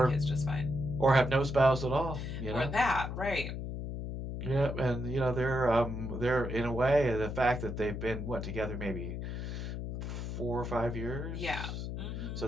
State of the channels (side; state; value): left; noise; hum, 5 dB below the sound